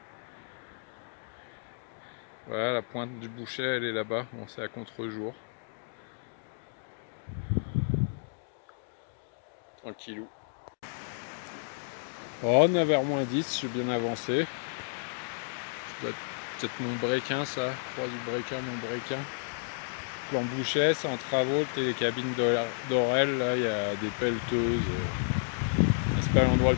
Voilà, la pointe du Bouchet elle est là-bas, bon c'est à contre-jour. Tranquillou. Oh, 9h-10, je suis bien avancé. Ça doit être peut-être mon breakin ça, croix du breakin, mon breakin. Plan Bouchet, c'est en travaux, le télécabine d'Orel, là il y a des pelleteuses. C'est pas l'endroit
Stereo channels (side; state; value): right; silent; digital silence